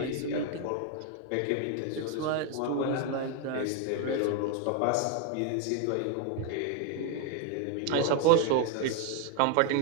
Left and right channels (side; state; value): both; different; correlation 0.01